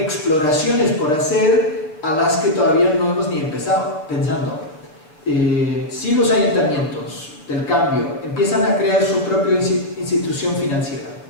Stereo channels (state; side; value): late; right; 6.6 ms